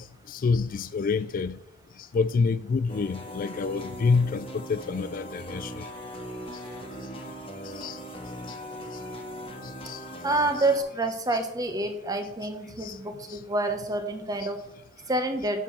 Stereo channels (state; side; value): normal; both; correlation 0.54